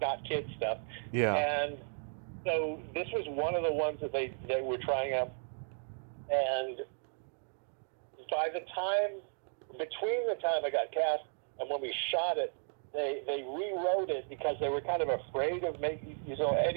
kid stuff. Yeah. And so this was one of the ones that they were trying out. And by the time, between the time I got cast and when we shot it, they rewrote it because they were kind of afraid of making,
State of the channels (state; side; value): silent; left; 55 dB below the other